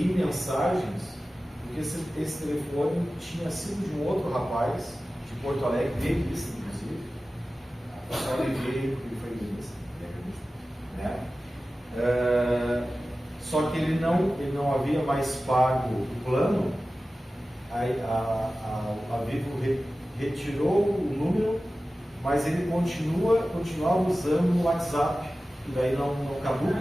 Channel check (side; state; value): both; normal; correlation 0.95